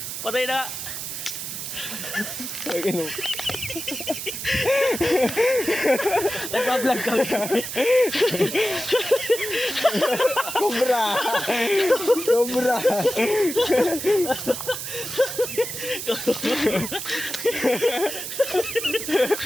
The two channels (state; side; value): noise; right; hiss, 6 dB below the sound